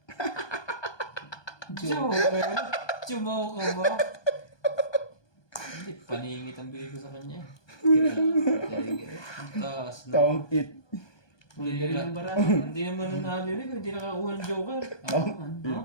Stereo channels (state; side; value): late; right; 1.2 ms